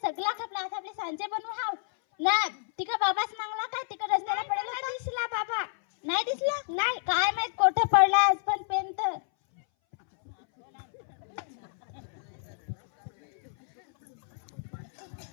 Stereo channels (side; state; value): right; silent; 58 dB below the other